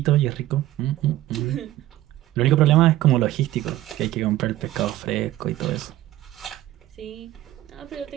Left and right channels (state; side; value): quieter; left; 14.8 dB